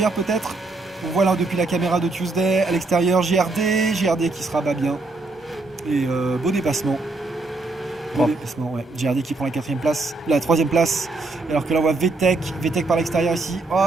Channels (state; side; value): quieter; left; 3.3 dB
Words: peut-être. On voit là depuis la caméra de Tuesday, à l'extérieur GRD qui se rabat bien. Et beau dépassement. GRD qui prend la 4ème place, la 3ème place. Alors que là on voit VTEC par l'extérieur ici.